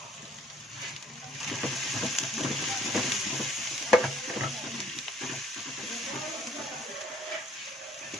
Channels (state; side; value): normal; both; correlation 0.60